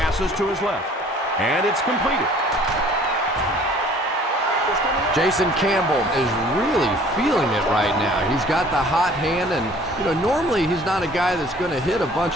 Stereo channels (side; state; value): both; normal; correlation 0.53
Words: to his left, and it's completed. Jason Campbell is really feeling it right now. He's got the hot hand, and normally he's not a guy that's going to hit a